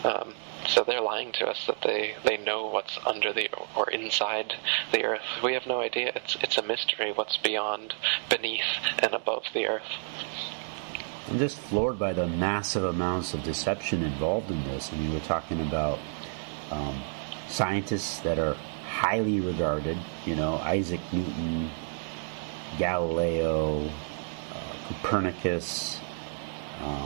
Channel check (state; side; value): silent; left; 58 dB below the other